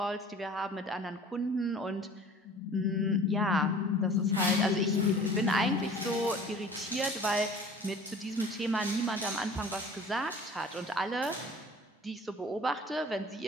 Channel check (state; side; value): normal; both; correlation 0.46